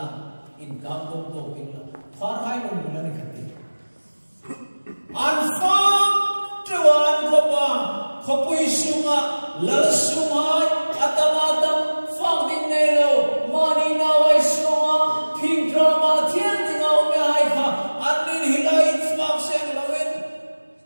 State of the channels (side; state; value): both; inverted; correlation -1.00